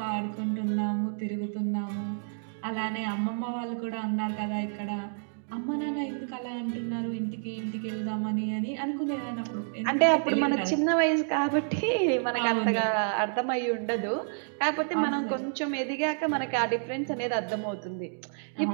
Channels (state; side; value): silent; left; digital silence